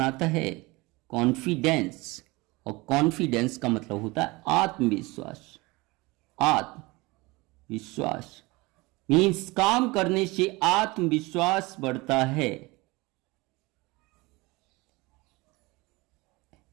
है। कॉन्फिडेंस, और कॉन्फिडेंस का मतलब होता है आत्मविश्वास। आत्मविश्वास मीन्स काम करने से आत्मविश्वास बढ़ता है।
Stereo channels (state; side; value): quieter; left; 23.3 dB